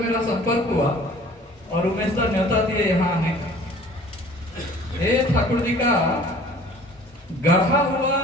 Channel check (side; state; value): both; normal; correlation 0.49